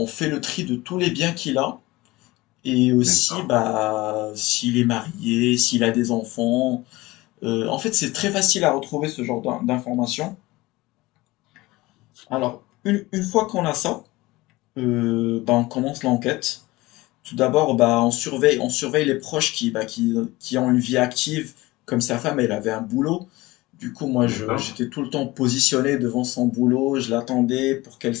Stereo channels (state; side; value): quieter; right; 20.2 dB